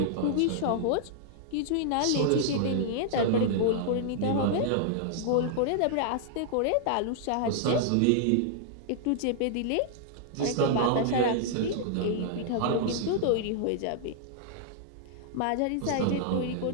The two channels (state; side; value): different; both; correlation -0.01